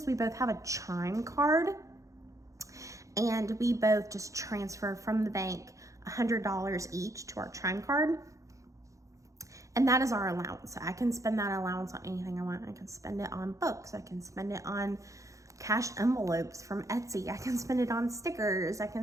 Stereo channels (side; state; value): left; late; 0.15 ms